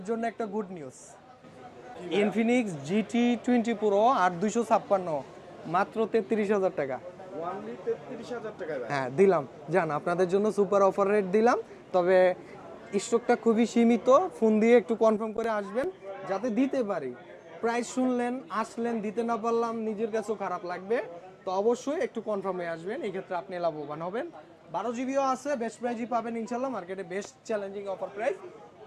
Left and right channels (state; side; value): identical; both; correlation 1.00